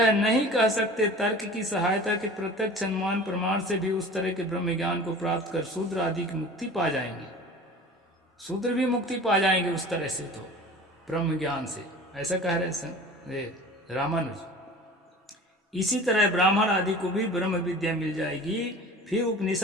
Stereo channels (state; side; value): normal; both; correlation 0.40